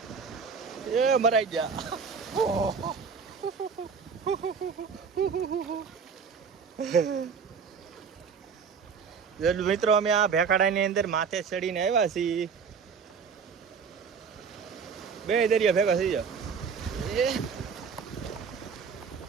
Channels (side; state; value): left; quieter; 5.9 dB